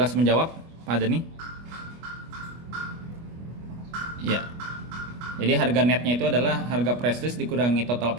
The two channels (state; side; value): late; left; 25 ms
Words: menjawab, Pak Dani? Ya. Jadi harga netnya itu adalah harga press list dikurangi total